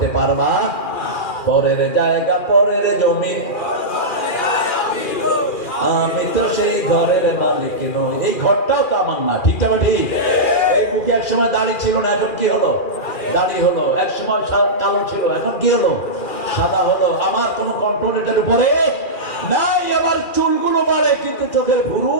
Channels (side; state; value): right; late; 2.4 ms